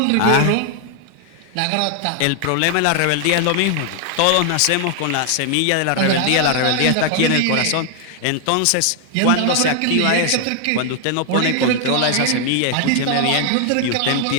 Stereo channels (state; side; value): different; both; correlation 0.00